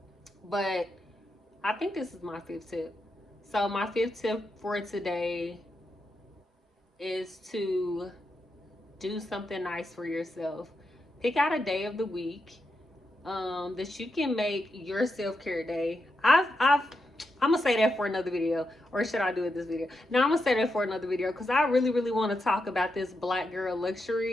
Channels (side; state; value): both; normal; correlation 0.85